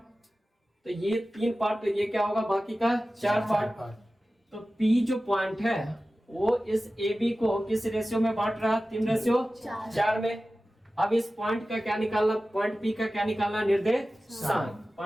तो ये 3 पार्ट, तो ये क्या होगा बाकी का 4 पार्ट। तो पी जो पॉइंट है वो इस ए बी को किस रेशियो में बांट रहा है 3:4 में। अब इस पॉइंट का क्या निकालना, पॉइंट पी का क्या निकालना निर्देशांक,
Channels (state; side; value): normal; both; correlation 0.95